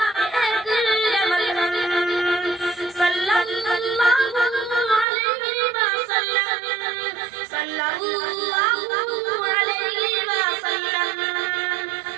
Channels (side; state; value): left; drops out; at 5.1 s